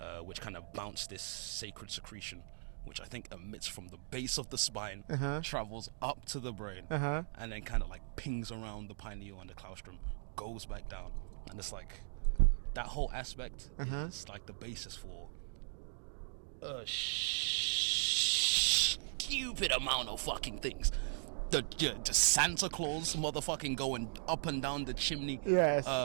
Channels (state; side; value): silent; left; digital silence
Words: which kind of bounce this sacred secretion, which I think emits from the base of the spine, travels up to the brain, and then kind of like pings around the pineal and the claustrum, goes back down, and it's like. That whole aspect is like the basis for a stupid amount of fucking things. The Santa Claus motherfucking going up and down the chimney.